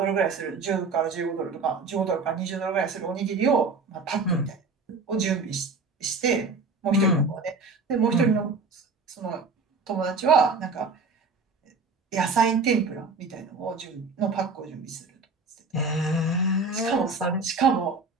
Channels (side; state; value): left; quieter; 4.0 dB